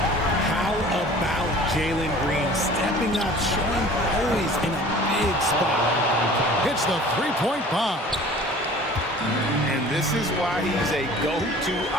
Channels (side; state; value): both; normal; correlation 0.46